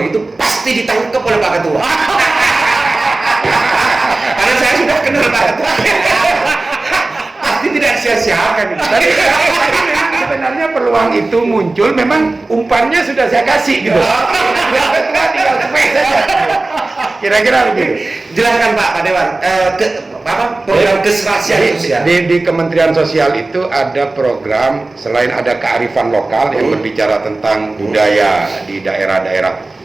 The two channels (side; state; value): left; quieter; 3.1 dB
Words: pasti ditangkap oleh Pak Ketua. Karena saya sudah kenal Pak Ketua. Pasti tidak sia-siakan. Tapi sebenarnya peluang itu muncul, memang umpannya sudah saya kasih gitu. Ketua tinggal spek saja. Kira-kira begitu. Jelaskan Pak Dewan, program keserasian sosial. Di Kementerian Sosial itu ada program, selain ada kearifan lokal yang berbicara tentang budaya di daerah-daerah